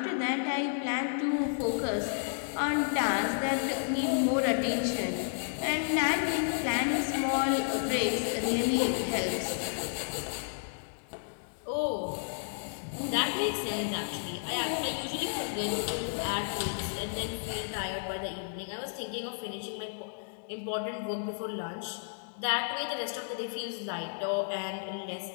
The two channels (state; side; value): silent; right; digital silence